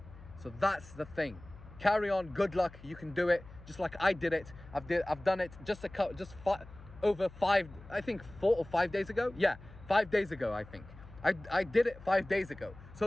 So that's the thing. Carry on. Good luck. You can do it, just like I did it. I've done it over 5, I think 4 or 5 days ago. Yeah, 5 days ago, I think. I did it 5 days ago.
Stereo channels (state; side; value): noise; left; hum, 19 dB below the sound